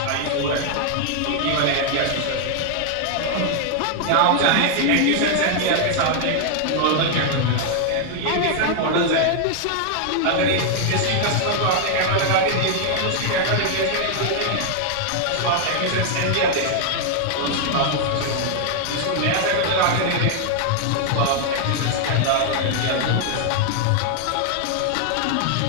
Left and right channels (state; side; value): different; both; correlation 0.00